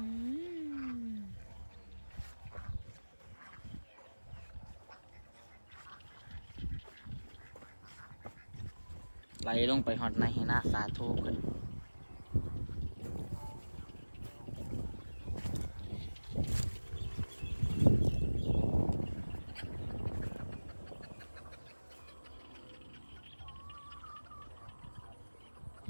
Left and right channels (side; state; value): both; inverted; correlation -1.00